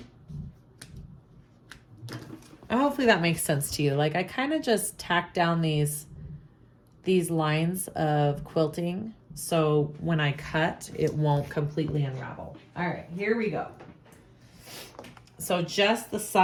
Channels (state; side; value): identical; both; correlation 1.00